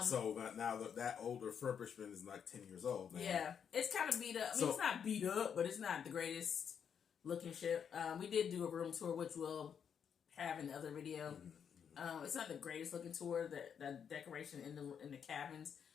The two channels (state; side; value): quieter; right; 7.6 dB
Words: So now that old refurbishment is like 10 years old now. Yeah, it's kind of beat up. I mean, it's not beat up, but it's not the greatest looking ship. We did do a room tour, which we'll have in the other video. Mm-hmm. It's not the greatest looking tour. The decoration in the cabins